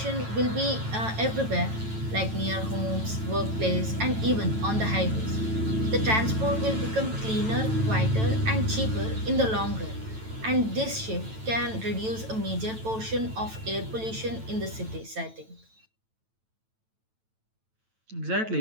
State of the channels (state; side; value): late; left; 9.1 ms